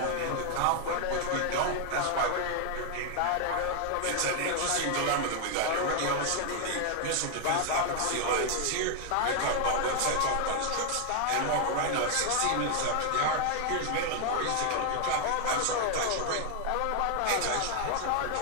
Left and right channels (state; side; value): different; both; correlation 0.00